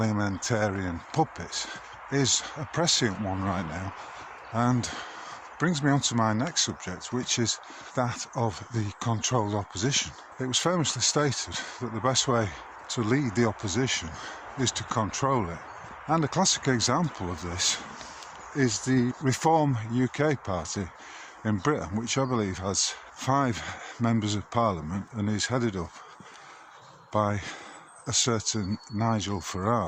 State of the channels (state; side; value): identical; both; correlation 1.00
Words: puppets is a prescient one right now, and brings me on to my next subject, which is that of the controlled opposition. It was famously stated that the best way to lead the opposition is to control it. And a classic example of this is the Reform UK party in Britain, which I believe has 5 members of parliament and is headed up by a certain Nigel